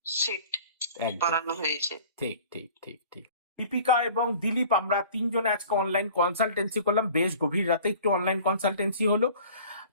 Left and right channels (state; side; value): inverted; both; correlation -0.46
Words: সিট একদম পরানো হয়েছে। ঠিক ঠিক ঠিক ঠিক। দীপিকা এবং দিলীপ আমরা তিনজনে আজকে অনলাইন কনসালটেন্সি করলাম, বেশ গভীর রাতে একটু অনলাইন কনসালটেন্সি হলো।